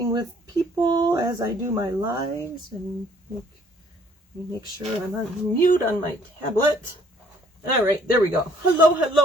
with people as I do my lives, and make sure I'm on mute on my tablet. All right, there we go.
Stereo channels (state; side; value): normal; both; correlation 0.60